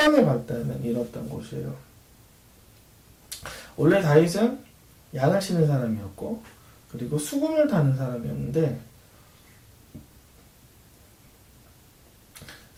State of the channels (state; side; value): identical; both; correlation 1.00